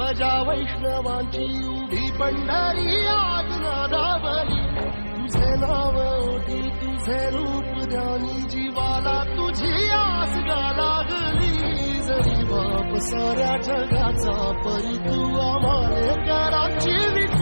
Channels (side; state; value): both; inverted; correlation -1.00